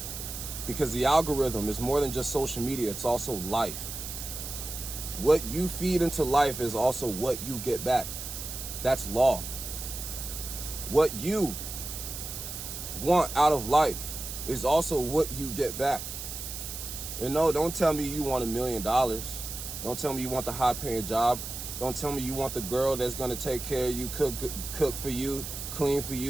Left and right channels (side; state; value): right; noise; hiss, 8 dB below the sound